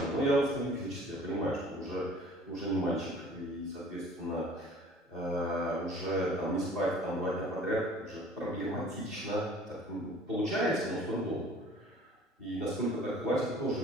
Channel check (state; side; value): normal; both; correlation 0.49